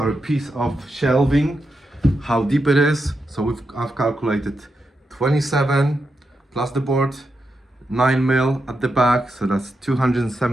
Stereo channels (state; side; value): normal; both; correlation 0.86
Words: piece of shelving, how deep it is. So I've calculated 27 plus the board, 9 mil at the back, so that's